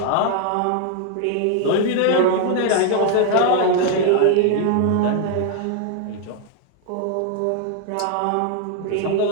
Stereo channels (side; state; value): both; different; correlation 0.00